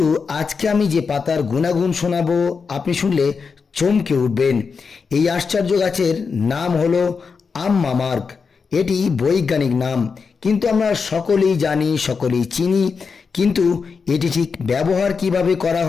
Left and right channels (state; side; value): quieter; right; 5.3 dB